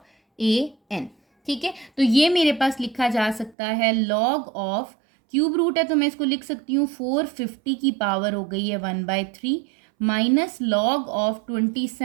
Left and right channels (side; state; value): left; drops out; at 3.6 s